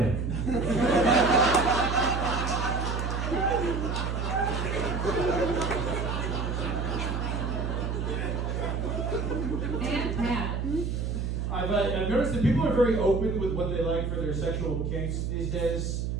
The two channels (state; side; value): noise; right; hum, 1 dB below the sound